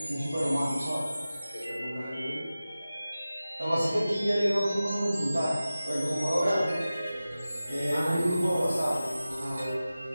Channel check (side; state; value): both; inverted; correlation -0.96